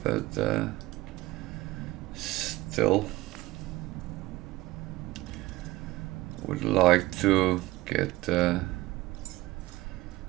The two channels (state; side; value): quieter; left; 18.8 dB